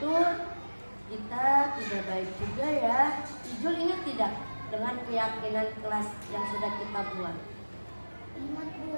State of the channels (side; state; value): both; inverted; correlation -1.00